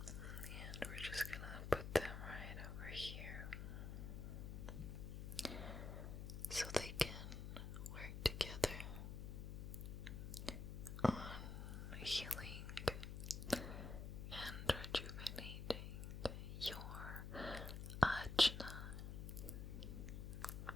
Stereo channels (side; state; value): left; noise; hum, 5 dB below the sound